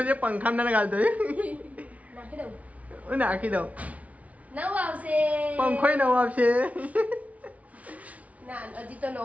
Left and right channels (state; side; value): late; left; 0.068 ms